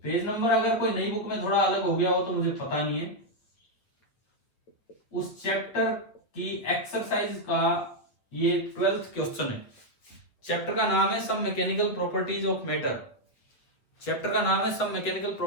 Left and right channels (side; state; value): right; late; 8.3 ms